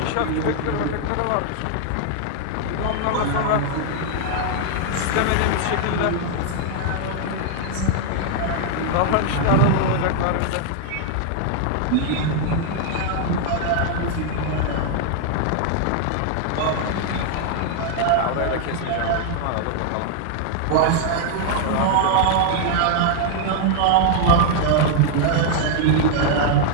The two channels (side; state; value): both; different; correlation 0.00